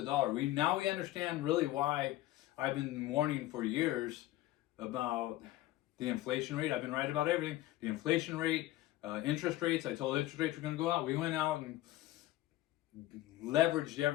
dollar. We understand really why I've been warning for years about the inflation rate. I've been right about everything. The inflation rate, interest rates. I told interest rates were going to go out. We went out and leveraged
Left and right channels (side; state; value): right; quieter; 15.8 dB